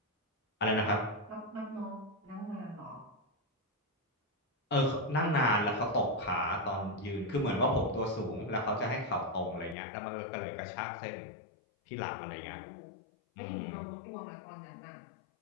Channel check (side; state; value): right; drops out; at 9.8 s